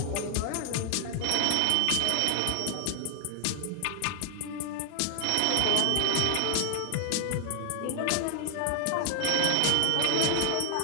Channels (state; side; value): different; both; correlation 0.00